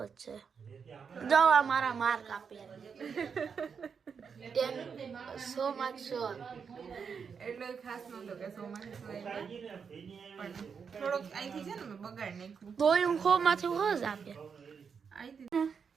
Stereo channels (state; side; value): quieter; left; 6.3 dB